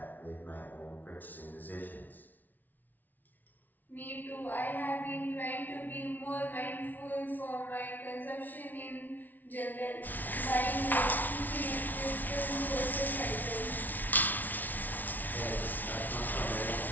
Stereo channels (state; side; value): late; right; 0.082 ms